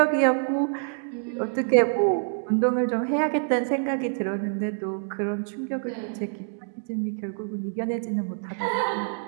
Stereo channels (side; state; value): left; silent; digital silence